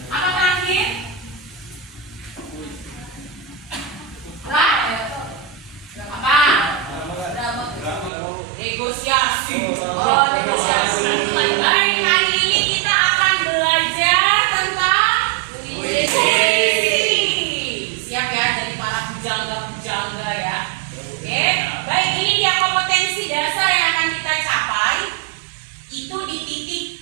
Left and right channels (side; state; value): left; drops out; at 8.1 s